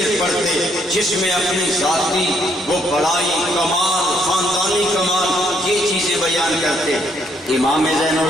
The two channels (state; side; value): normal; both; correlation 0.71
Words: پڑھتے، جس میں اپنی ذاتی وہ بڑائی، کمال، خاندانی کمال یہ چیزیں بیان کرتے۔ امام زین